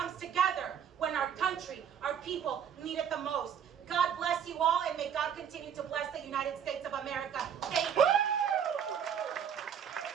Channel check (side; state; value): left; quieter; 8.4 dB